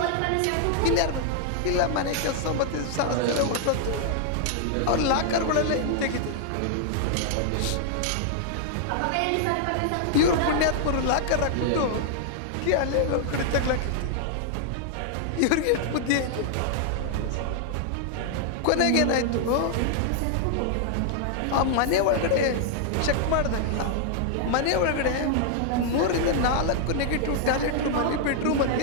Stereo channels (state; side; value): different; both; correlation -0.01